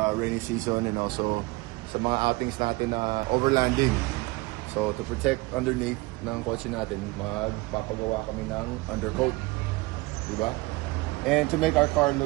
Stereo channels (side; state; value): left; quieter; 23.1 dB